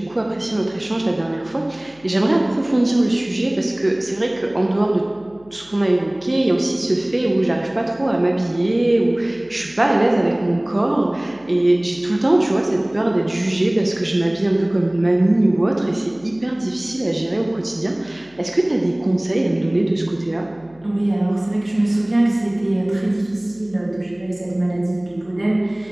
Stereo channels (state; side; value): noise; left; hum, 28 dB below the sound